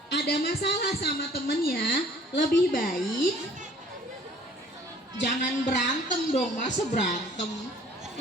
ada masalah sama temennya, lebih baik jangan berantem dong, masa berantem.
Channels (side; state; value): both; normal; correlation 0.54